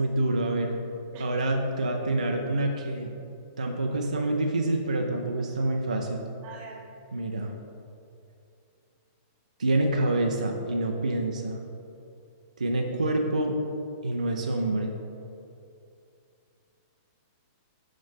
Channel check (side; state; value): both; inverted; correlation -0.76